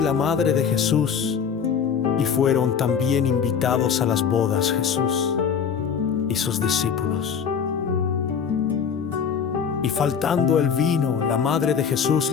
la madre de Jesús, y fueron también invitados a las bodas Jesús y sus discípulos. Y faltando el vino, la madre de Jesús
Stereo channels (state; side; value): quieter; right; 7.1 dB